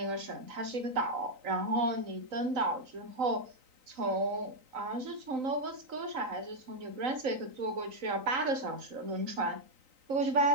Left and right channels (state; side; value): late; left; 3.9 ms